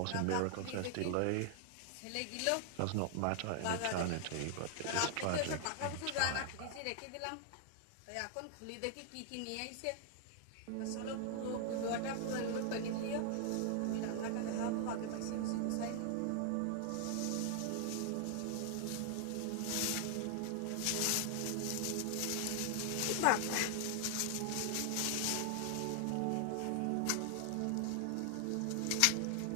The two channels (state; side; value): different; both; correlation 0.00